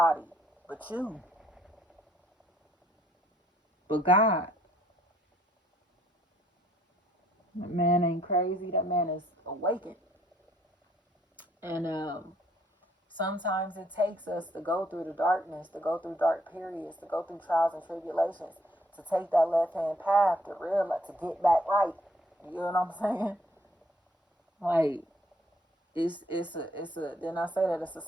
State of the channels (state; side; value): normal; both; correlation 0.66